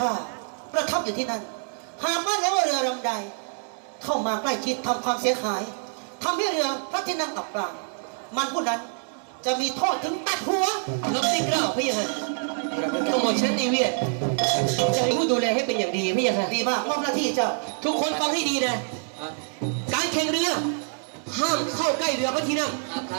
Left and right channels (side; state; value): left; silent; 56 dB below the other